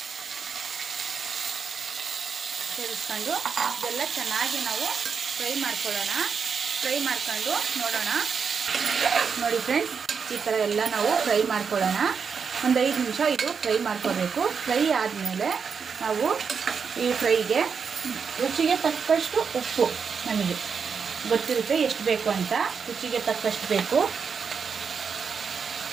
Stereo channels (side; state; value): left; quieter; 6.1 dB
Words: ಸೇರಿಸ್ಕೊಂಡು ಇದೆಲ್ಲ ಚೆನ್ನಾಗಿ ನಾವು ಫ್ರೈ ಮಾಡ್ಕೊಳ್ಳೋಣ. ಫ್ರೈ ಮಾಡ್ಕೊಂಡು ನೋಡೋಣ. ನೋಡಿ ಫ್ರೆಂಡ್ಸ್, ಈ ಥರ ಎಲ್ಲ ನಾವು ಫ್ರೈ ಮಾಡ್ಕೊಳ್ಳೋಣ. ಒಂದು 5 ನಿಮಿಷ ಇದು ಫ್ರೈ ಮಾಡ್ಕೋಬೇಕು. ಫ್ರೈ ಆದಮೇಲೆ ನಾವು ಈ ಫ್ರೈಗೆ ರುಚಿಗೆ ತಕ್ಕಷ್ಟು ಉಪ್ಪು, ನಮಗೆ ಗೊತ್ತಿರುತ್ತೆ ಎಷ್ಟು ಬೇಕು ಅಂತ, ರುಚಿಗೆ ತಕ್ಕಷ್ಟು ಬೇಕು.